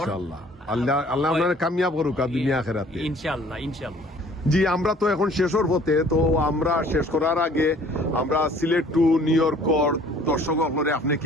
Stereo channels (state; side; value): normal; both; correlation 0.54